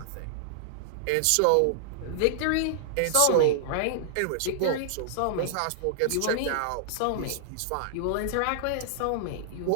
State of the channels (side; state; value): both; different; correlation -0.01